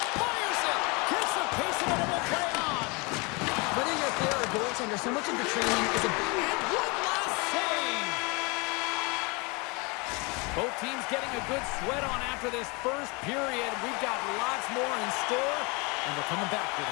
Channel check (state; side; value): quieter; right; 28.8 dB